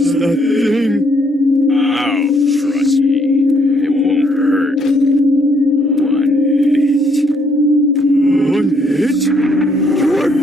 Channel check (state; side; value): normal; both; correlation 0.70